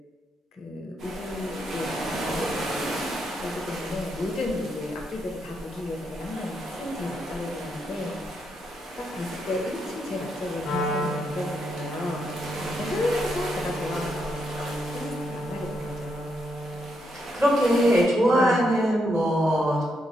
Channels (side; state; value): both; normal; correlation 0.80